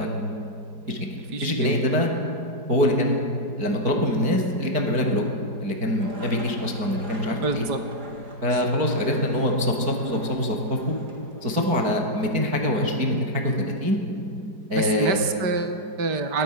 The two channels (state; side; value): late; left; 4.8 ms